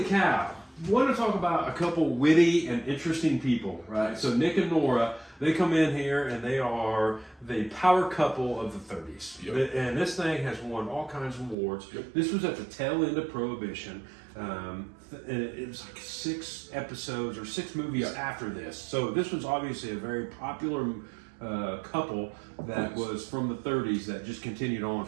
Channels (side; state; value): left; drops out; at 11.6 s